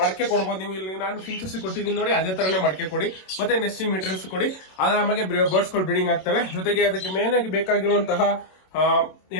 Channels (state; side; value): late; right; 27 ms